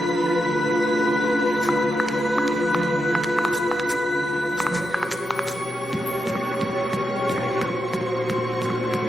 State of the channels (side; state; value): both; normal; correlation 0.86